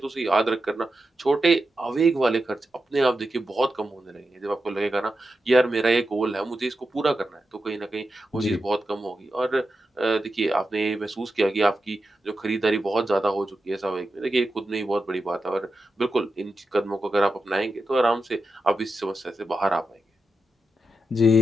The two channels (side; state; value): both; normal; correlation 0.89